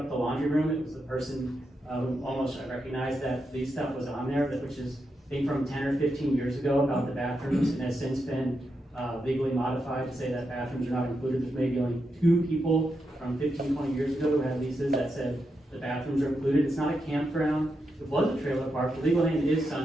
the laundry room. It was the person who almost I recognized that lease stuff was on there, which is I think from 10 or 15 years ago about the bathrooms, and has since been legally modified to say that bathrooms are not included. There's maybe only 2 people from 15, 20 years ago who had leases that said the bathrooms are included. It's not a campground. It was a trailer park. The legal name is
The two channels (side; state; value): both; normal; correlation 0.85